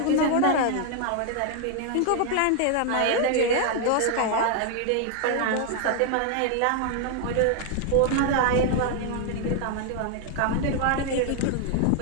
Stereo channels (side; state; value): both; different; correlation 0.00